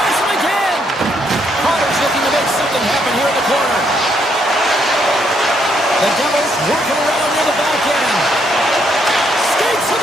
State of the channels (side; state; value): both; normal; correlation 0.73